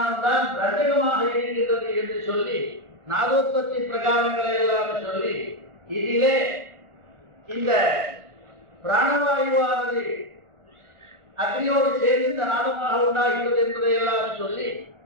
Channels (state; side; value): late; left; 1.9 ms